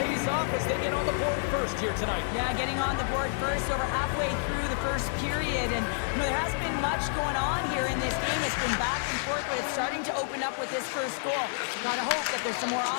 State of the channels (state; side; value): silent; right; digital silence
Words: off as they get on the board first here tonight. Yeah, getting on the board first over halfway through the first period. And, there hasn't been much going on here in this game. It's been back and forth, but it's starting to open up with this first goal. Gotta hope that there's some more